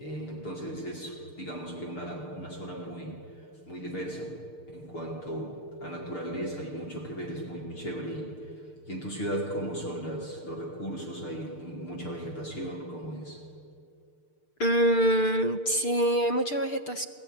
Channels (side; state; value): right; late; 6.7 ms